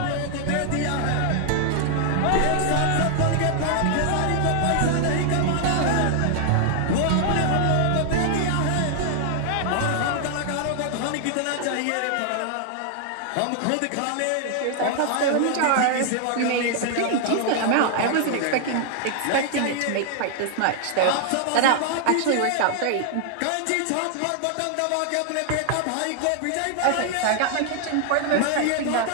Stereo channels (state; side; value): different; both; correlation 0.00